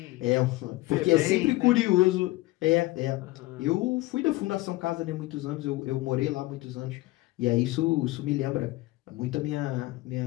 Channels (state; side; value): quieter; right; 19.4 dB